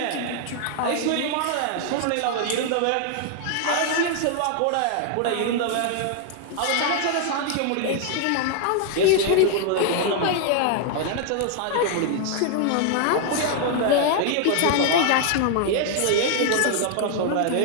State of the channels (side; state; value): both; different; correlation 0.00